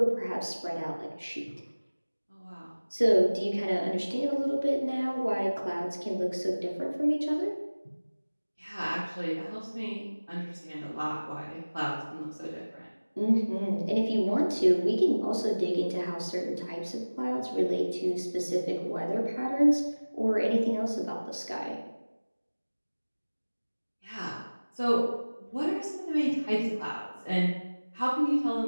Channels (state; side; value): inverted; both; correlation -1.00